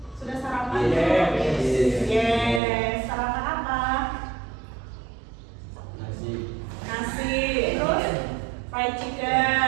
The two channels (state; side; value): drops out; left; at 2.6 s